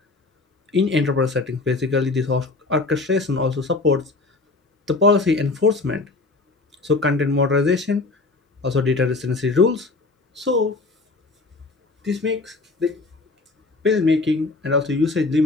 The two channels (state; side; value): quieter; right; 3.5 dB